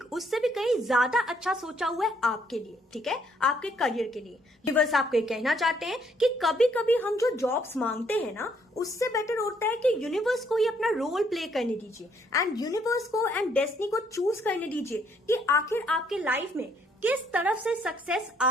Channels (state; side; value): normal; both; correlation 0.68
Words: उससे भी कहीं ज्यादा अच्छा सोचा हुआ है आपके लिए, ठीक है, आपके करियर के लिए। यूनिवर्स आपको ये कहना चाहते हैं कि कभी कभी हम जो जॉब्स मांगते हैं ना उससे बेटर होता है कि यूनिवर्स को ही अपना रोल प्ले करने दीजिए एंड यूनिवर्स को एंड डेस्टिनी को चूज करने दीजिए कि आखिर आपके लाइफ में किस तरफ से सक्सेस